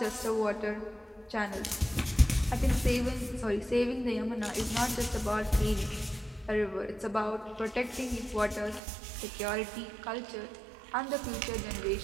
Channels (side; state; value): left; drops out; at 8.8 s